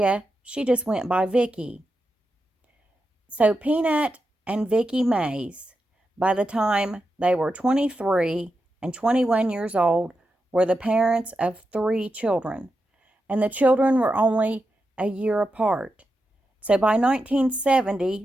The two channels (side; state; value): both; normal; correlation 0.88